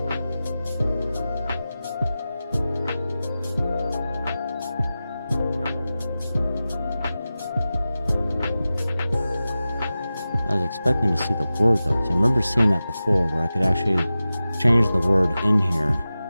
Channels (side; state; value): both; inverted; correlation -0.95